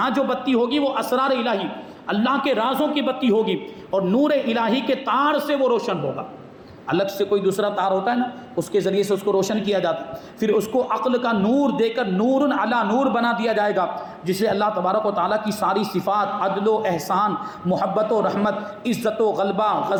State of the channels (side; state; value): both; identical; correlation 1.00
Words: جو بتی ہوگی وہ اسرار الہی، اللہ کے رازوں کی بتی ہوگی، اور نور الہی کے تار سے وہ روشن ہوگا۔ الگ سے کوئی دوسرا تار ہوتا ہے نا، اس کے ذریعے سے اس کو روشن کیا جاتا ہے، پھر اس کو عقل کا نور دے کر نور علی نور بنا دیا جائے گا، جسے اللہ تبارک و تعالیٰ کی ساری صفات، عدل و احسان، محبت و رحمت، عزت و غلبہ،